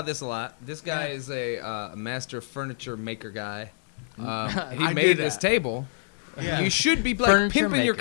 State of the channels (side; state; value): right; silent; digital silence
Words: this a lot. This guy Yeah. is a master furniture maker guy. He I made do this that. table. Yeah. You should be like Furniture pimping your maker.